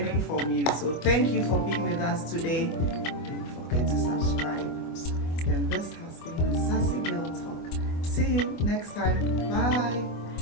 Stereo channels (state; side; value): late; right; 24 ms